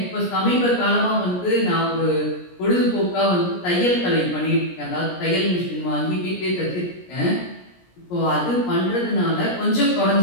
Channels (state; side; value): late; right; 17 ms